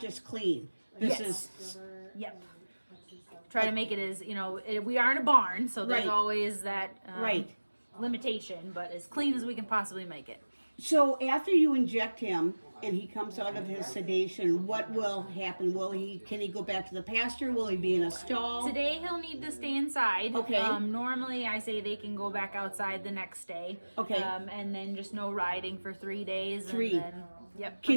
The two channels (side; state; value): both; inverted; correlation -1.00